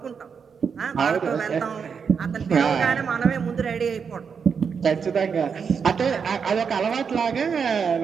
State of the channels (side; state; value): left; quieter; 6.3 dB